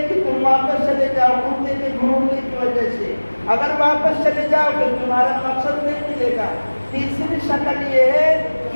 کہ تم واپس چلے جاؤ کتے کے بھونکنے کی وجہ سے، اگر واپس چلے جاؤ تو تمہارا مقصد نہیں ملے گا۔ تیسری شکل یہ ہے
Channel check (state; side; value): inverted; both; correlation -1.00